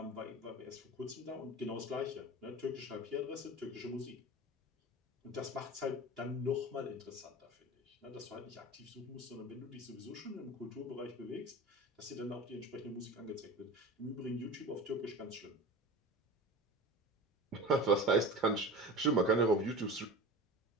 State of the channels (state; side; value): normal; both; correlation 0.33